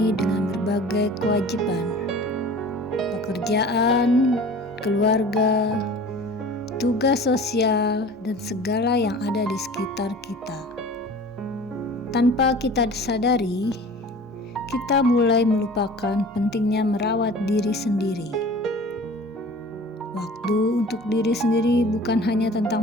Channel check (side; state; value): both; normal; correlation 0.43